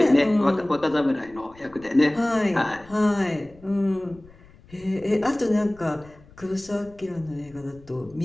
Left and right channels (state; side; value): noise; left; rumble, 24 dB below the sound